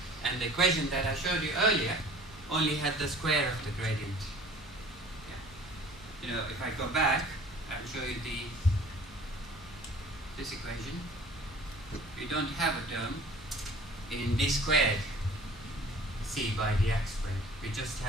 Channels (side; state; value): both; normal; correlation 0.48